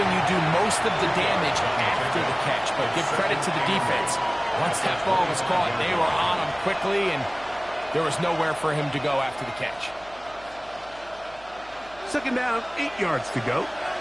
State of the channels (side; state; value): right; noise; hum, 24 dB below the sound